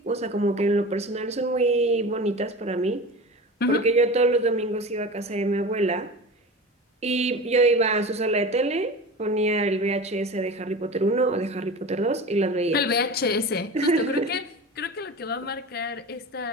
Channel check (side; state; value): both; normal; correlation 0.32